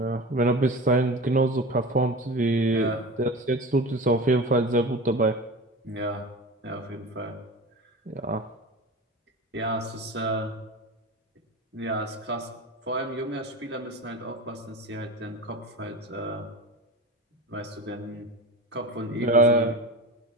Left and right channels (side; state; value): both; normal; correlation 0.30